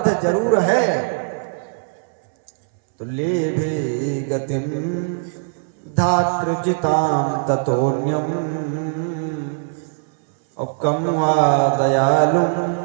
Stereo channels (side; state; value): left; silent; 65 dB below the other